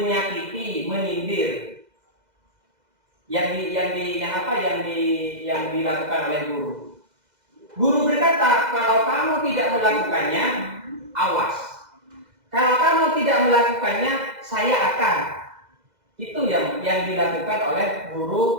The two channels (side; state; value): left; late; 2.0 ms